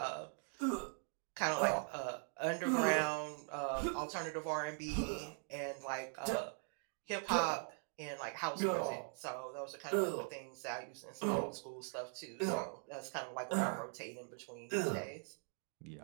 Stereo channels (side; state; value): left; silent; 50 dB below the other